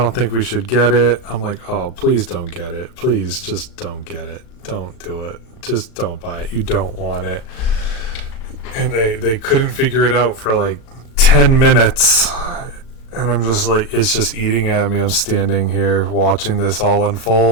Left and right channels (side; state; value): right; late; 37 ms